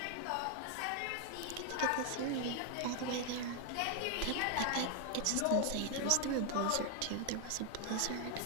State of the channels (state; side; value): different; both; correlation 0.00